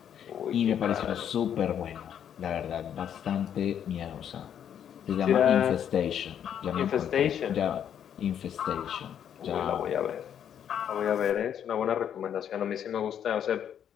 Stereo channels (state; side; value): quieter; right; 9.1 dB